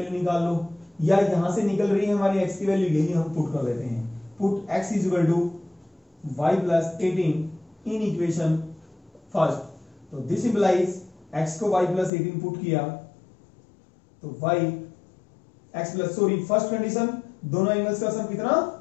निकाल लो, या यहां से निकल रही है हमारी x की वैल्यू, यही हम पुट कर देते हैं, put x is equal to y plus 18 in equation first, तो दिस इंप्लाइज x को y प्लस 18 पुट किया तो y x plus, sorry first condition, दोनों एंगल्स का सम कितना,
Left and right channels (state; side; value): drops out; right; at 12.1 s